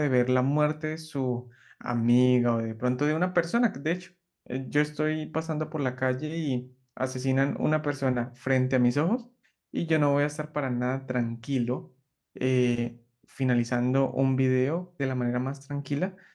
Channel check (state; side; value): identical; both; correlation 1.00